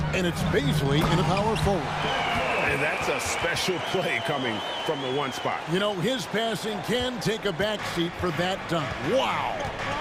and it's Baisley in a power forward. And that's a special play coming from the 1 spot. You know, his passing can take a backseat for that dunk. Wow.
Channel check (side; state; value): both; identical; correlation 1.00